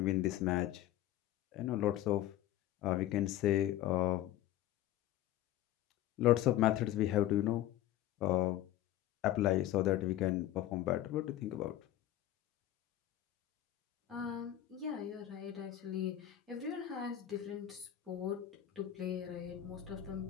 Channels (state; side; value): quieter; right; 13.1 dB